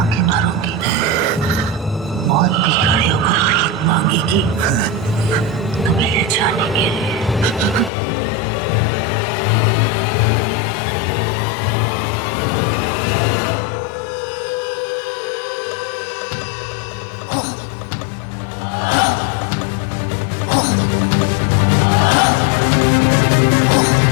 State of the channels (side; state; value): right; drops out; at 7.9 s